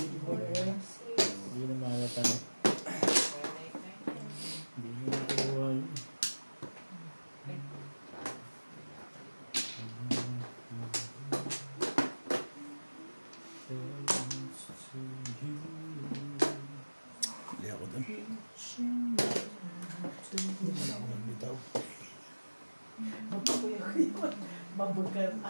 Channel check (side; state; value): both; inverted; correlation -1.00